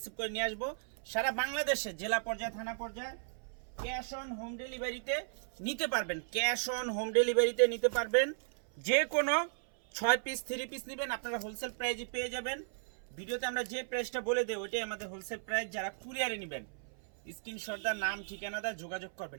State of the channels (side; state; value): left; silent; 54 dB below the other